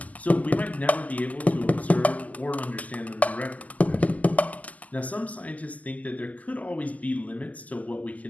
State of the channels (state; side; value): late; right; 0.076 ms